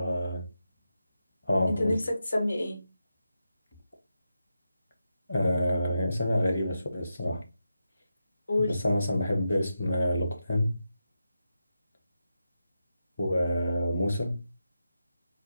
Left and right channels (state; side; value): inverted; both; correlation -0.88